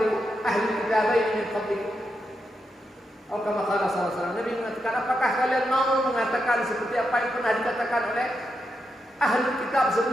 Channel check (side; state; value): both; normal; correlation 0.85